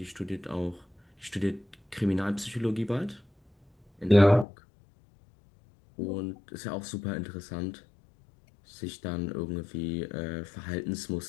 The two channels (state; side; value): drops out; right; at 4.5 s